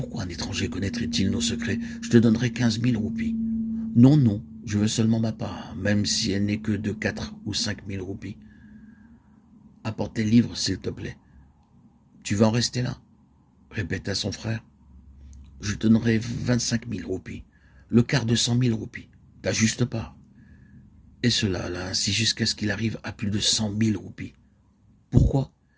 un étranger connaîtrait-il nos secrets? Je te donnerai 15 000 roupies. »« Non, non, je veux seulement ma part, même si elle n'est que de 4 ou 5 000 roupies. Apporte les livres, s'il te plaît. »« Tu vas en rester là ?» répéta son frère. « Je te donnerai 25 000 roupies, le quart de 100 000 roupies, ta juste part. » Et cela là, ainsi jusqu'à ce qu'il arrive à plus de 100 000 roupies. Pourquoi?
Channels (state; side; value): identical; both; correlation 1.00